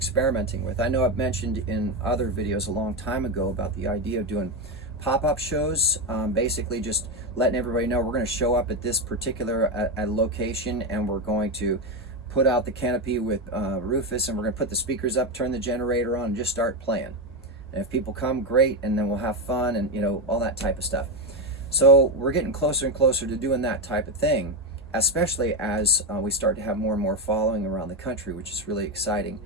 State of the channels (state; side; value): normal; both; correlation 0.11